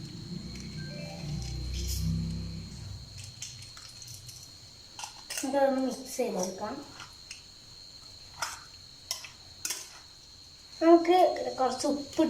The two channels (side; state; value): both; identical; correlation 1.00